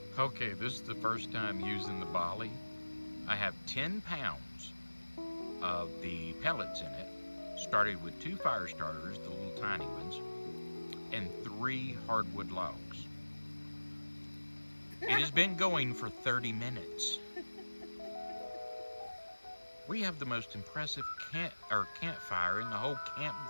Okay, this is the first time using the Bali. I have 10 pounds of the pellets in it. Started with 2 fire starters, the little tiny ones, and 3 hardwood logs. It has been going for 30 minutes. We have the most impressive campfire in the whole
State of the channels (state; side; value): inverted; both; correlation -1.00